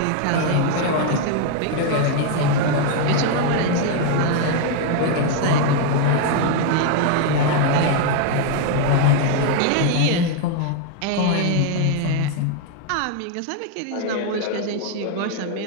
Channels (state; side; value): different; both; correlation 0.00